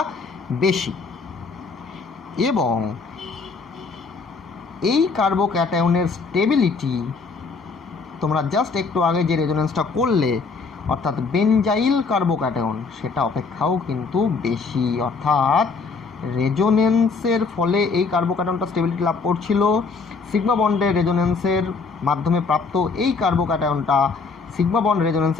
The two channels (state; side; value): quieter; right; 4.5 dB